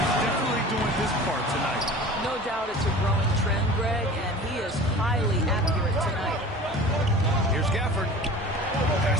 definitely doing his part tonight. No doubt it's a growing trend, Greg, and he is highly accurate tonight. Here's Gafford.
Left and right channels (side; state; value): both; normal; correlation 0.40